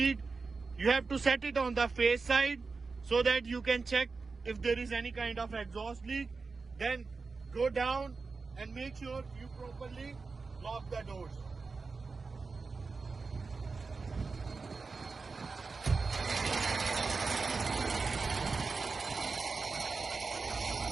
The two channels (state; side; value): quieter; left; 4.3 dB